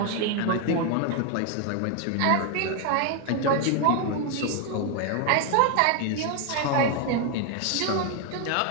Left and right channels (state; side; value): different; both; correlation 0.01